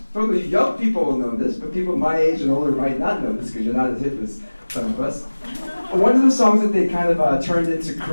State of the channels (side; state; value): both; inverted; correlation -1.00